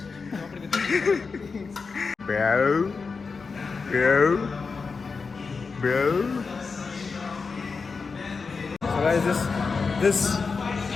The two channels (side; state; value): right; quieter; 4.8 dB